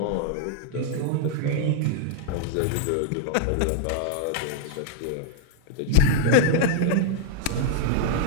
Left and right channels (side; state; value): both; different; correlation 0.00